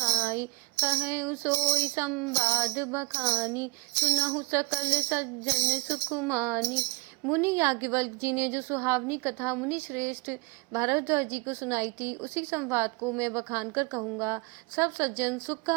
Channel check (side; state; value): left; quieter; 27.1 dB